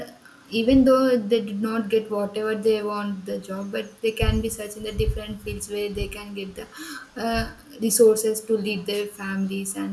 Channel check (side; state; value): both; identical; correlation 1.00